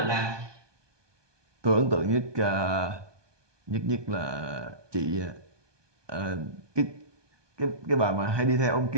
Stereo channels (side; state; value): left; late; 1.2 ms